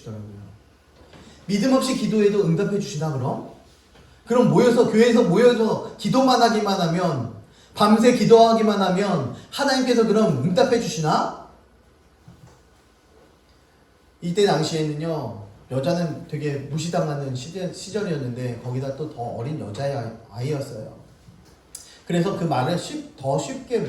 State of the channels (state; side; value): identical; both; correlation 1.00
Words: 믿음 없이 기도해도 응답해 주시나 그럼? 그럼 교회에서 모여서 기도만 하기만 하면, 밤새 기도하기만 하면 하나님께서 그럼 응답해 주시나? 이때 당시에는요 여자는 되게 무시당하는 시절이었는데 거기다 또 더 어린 여자아이였어요. 그래서 그 말을 더 쉽게